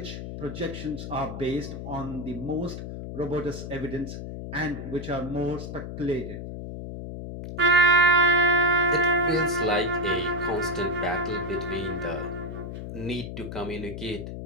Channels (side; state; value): left; noise; hum, 8 dB below the sound